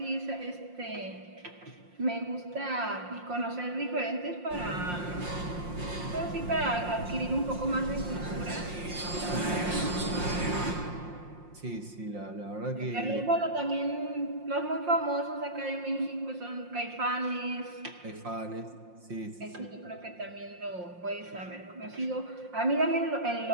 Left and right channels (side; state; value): left; late; 5.6 ms